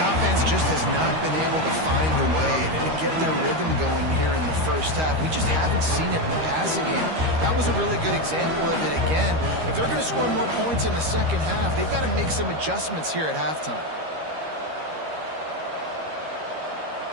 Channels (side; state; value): left; late; 13 ms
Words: offense just has not been able to find a way to get their rhythm going here in the 1st half. We just haven't seen it in the passing game. That was a really good example of it again. If they're going to score more points in the 2nd half, they've got to make some adjustments here at halftime.